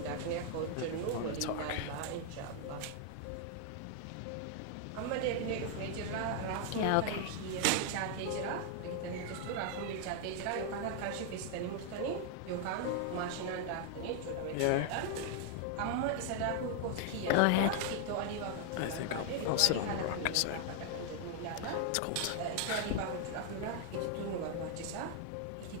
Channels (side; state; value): both; different; correlation 0.00